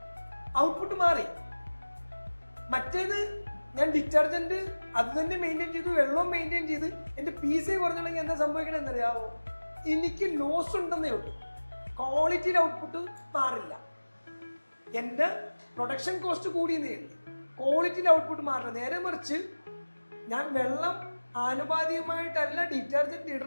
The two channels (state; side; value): inverted; both; correlation -1.00